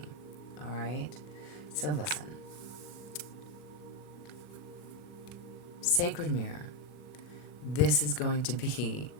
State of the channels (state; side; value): late; right; 39 ms